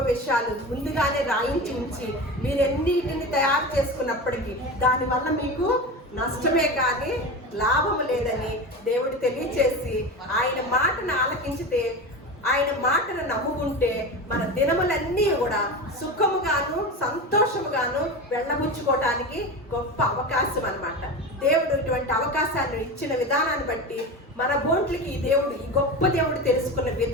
విషయాలు ముందుగానే రాయించి ఉంచి మీరెన్నిటిని తయారు చేసుకున్నప్పటికీ దానివల్ల మీకు నష్టమే కానీ లాభము లేదని దేవుడు తెలియచేసి, ఆయన మాటను ఆలకించితే, ఆయన మాటను నమ్ముకుంటే మన దినములన్నీ కూడా సుఖముగాను సంతోషముగాను వెళ్ళబుచ్చుకోవటానికి గొప్ప అవకాశం అన్నమాట. దేవుడు ఇటువంటి అవకాశాన్ని ఇచ్చిన విధానాన్ని బట్టి, మన బోట్లకి ఈ గొప్ప దేవుడు తెలుసుకున్న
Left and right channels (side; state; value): both; normal; correlation 0.26